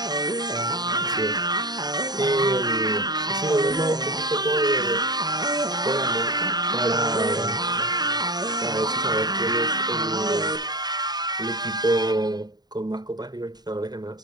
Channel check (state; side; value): late; left; 0.20 ms